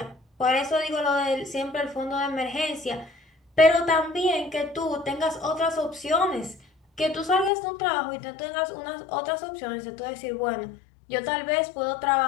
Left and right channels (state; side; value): drops out; right; at 7.5 s